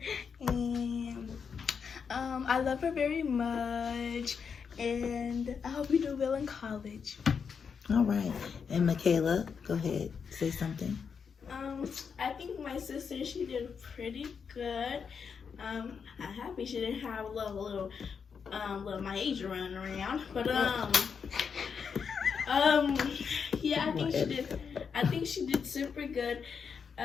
and I love her very much. And I hope you do well in college. All right. And Michaela, go ahead, say something. I think my sister, she did pretty good. I'm happy she didn't have a little Myasia running around, but yeah, I think she did super good.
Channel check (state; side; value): quieter; right; 6.3 dB